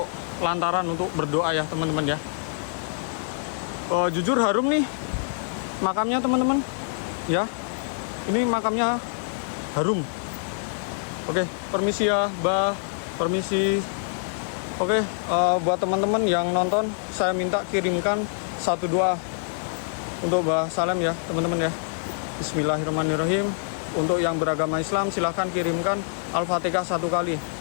lantaran untuk berdoa ya teman-teman ya. Jujur harum nih makamnya teman-teman ya. Ini makamnya harum. Oke, permisi ya Mbah. Permisi. Oke, buat teman-teman yang nonton, saya minta kirimkan satu doa untuk Mbah Salem ya teman-teman ya. Bismillahirrahmanirrahim. Untuk yang beragama Islam silahkan kirimkan Al-Fatihah 1 kali.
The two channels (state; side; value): silent; right; digital silence